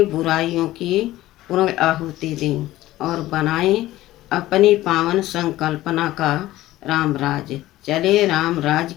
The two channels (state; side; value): quieter; right; 15.9 dB